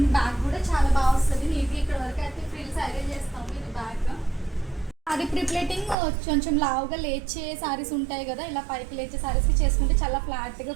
బ్యాగ్ కూడా చాలా బాగా వస్తుంది నీట్గా. ఇక్కడ వరకు అయితే ఫ్రిల్స్ అరేంజ్ చేస్తాము. ఇది బ్యాగ్ సారీ ప్రీప్లేటింగ్ కొంచెం లావుగా లేచే సారీస్ ఉంటాయి కదా, ఇలా పైకి లేచే సారీస్కి చేసుకుంటే చాలా ఫ్లాట్గా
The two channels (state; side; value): drops out; left; at 6.0 s